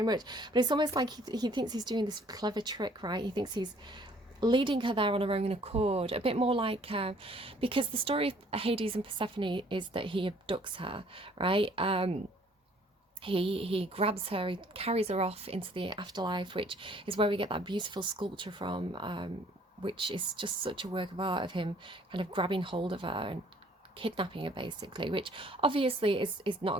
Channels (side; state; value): both; normal; correlation 0.59